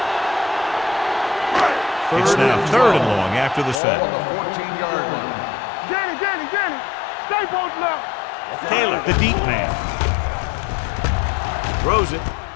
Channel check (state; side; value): drops out; right; at 3.8 s